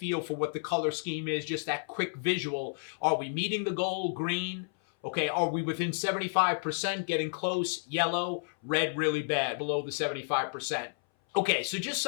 for what the color scheme is, just that quick visual. Are we meeting the goal? Green. Okay, are we within 75%, getting close? Yellow. Red, really bad, below the 75%. Okay, so just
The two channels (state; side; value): silent; right; 57 dB below the other